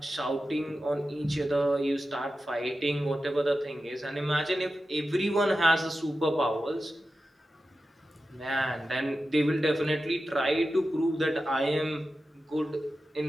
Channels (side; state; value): both; normal; correlation 0.92